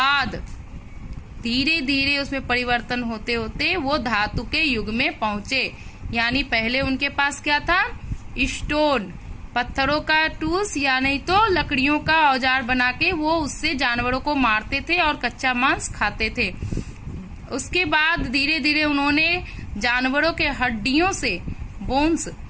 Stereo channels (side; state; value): both; identical; correlation 1.00